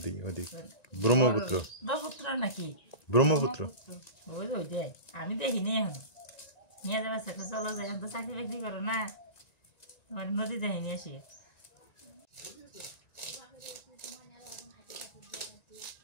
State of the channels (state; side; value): late; right; 1.9 ms